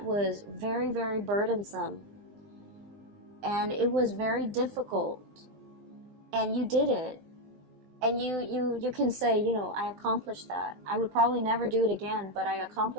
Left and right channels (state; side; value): late; left; 20 ms